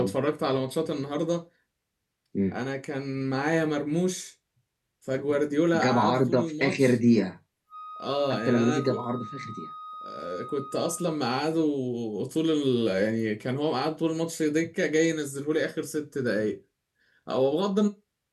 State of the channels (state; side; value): identical; both; correlation 1.00